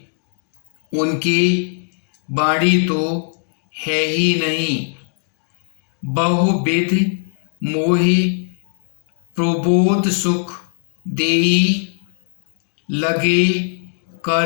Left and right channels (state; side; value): silent; right; digital silence